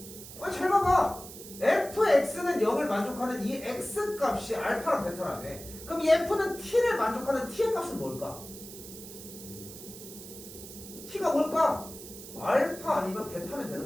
아니 잘 봐봐. fx는 0을 만족하는 이 x 값이 알파랑 베타라며. 그럼 이 f는 t를 만족하는 t의 값은 뭘까? t가 뭘까? 알파 아니면 베타면 되는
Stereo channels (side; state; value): right; noise; hiss, 14 dB below the sound